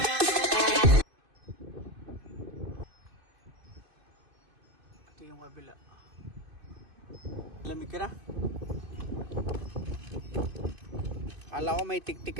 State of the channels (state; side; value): late; left; 2.5 ms